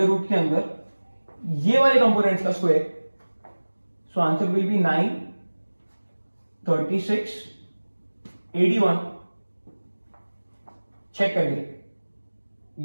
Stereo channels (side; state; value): both; inverted; correlation -1.00